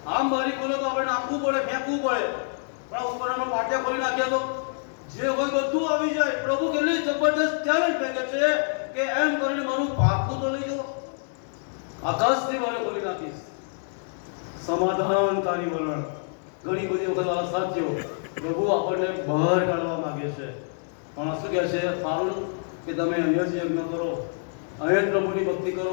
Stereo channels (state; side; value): silent; right; digital silence